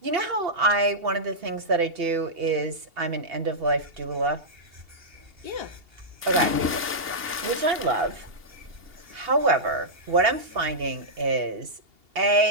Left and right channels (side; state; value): left; late; 2.8 ms